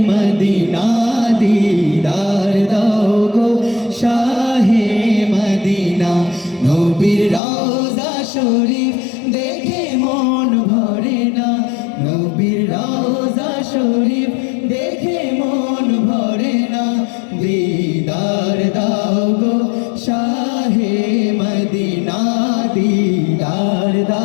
মদিনা, দিদার দাও গো শাহে মদিনা। নবীর রওজা শরীফ দেখে মন ভরে না, নবীর রওজা শরীফ দেখে মন ভরে না। দিদার দাও গো শাহে মদিনা, দিদার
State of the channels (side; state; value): right; drops out; at 7.4 s